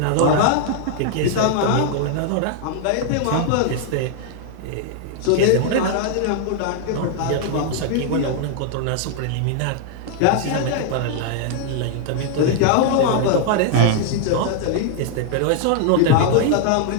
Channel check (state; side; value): different; both; correlation 0.00